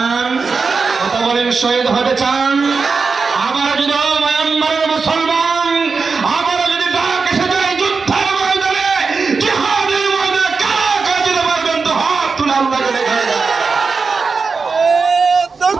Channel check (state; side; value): quieter; left; 4.7 dB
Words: কথা বলেন, শহীদ হতে চান? আমার যদি মায়ানমারের মুসলমান আমার যদি ডাক এসে যায় যুদ্ধের ময়দানে, জিহাদের ময়দানে, কারা কারা যেতে পারবেন তো হাত তুলে আল্লাহকে দেখায়।